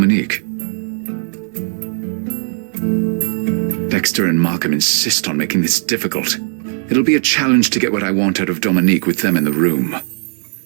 Dexter and Markham insist on making this difficult. It'll be a challenge to get what I want out of Dominique with them in the room.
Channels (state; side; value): silent; left; digital silence